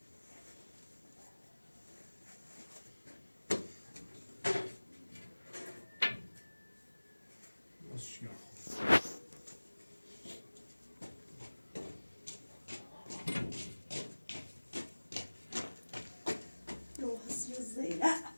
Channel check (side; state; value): both; inverted; correlation -1.00